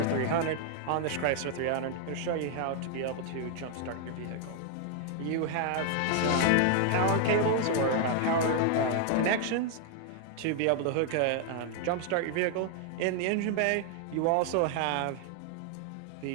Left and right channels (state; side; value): different; both; correlation 0.00